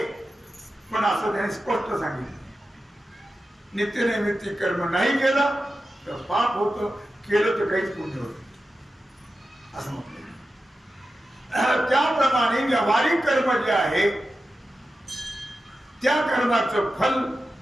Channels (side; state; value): both; normal; correlation 0.92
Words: पण असं त्याने स्पष्ट सांगितलं. नित्यनैमित्तिक कर्म नाही केलं तर पाप होतं, केलं तर काहीच पुण्य होत असं म्हटलं. त्याप्रमाणे व्यावहारिक कर्म जे आहे त्या कर्माचं फल